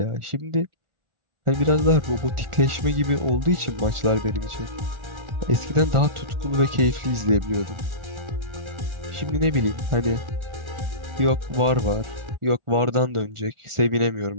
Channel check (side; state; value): left; late; 1.4 ms